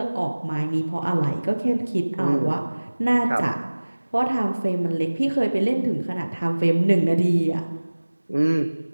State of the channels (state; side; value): inverted; both; correlation -1.00